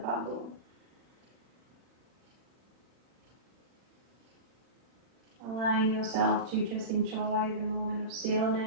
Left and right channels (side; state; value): left; late; 40 ms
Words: Allowing yourself to just enjoy the moment of